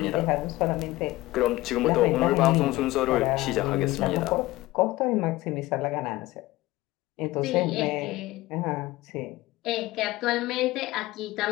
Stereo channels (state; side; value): quieter; right; 18.6 dB